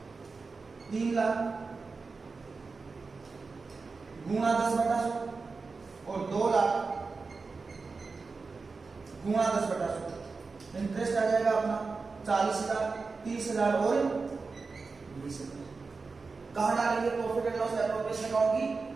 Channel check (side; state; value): left; quieter; 4.3 dB